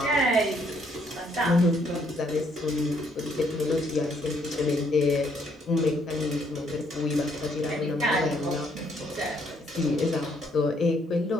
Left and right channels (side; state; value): both; normal; correlation 0.69